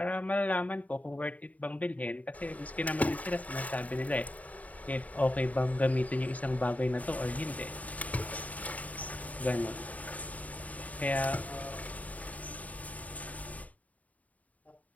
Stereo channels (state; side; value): late; right; 0.071 ms